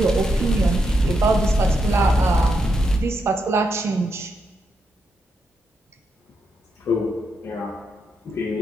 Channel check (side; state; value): both; normal; correlation 0.82